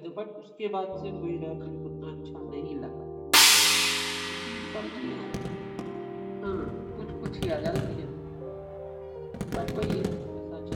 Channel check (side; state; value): both; identical; correlation 1.00